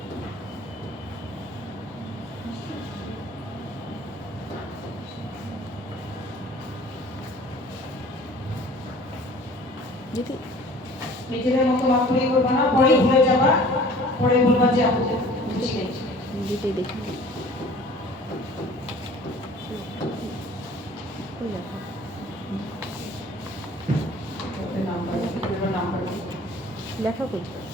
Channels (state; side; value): normal; both; correlation 0.49